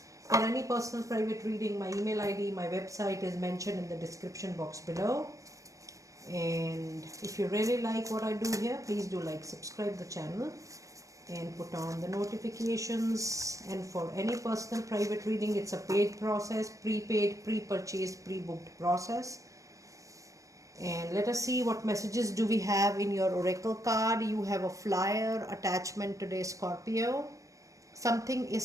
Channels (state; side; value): late; left; 0.16 ms